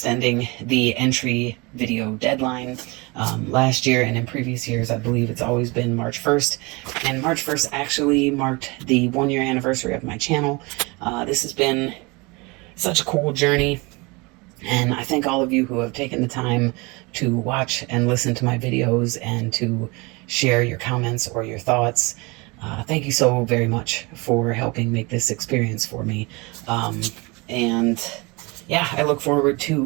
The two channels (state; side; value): quieter; left; 26.5 dB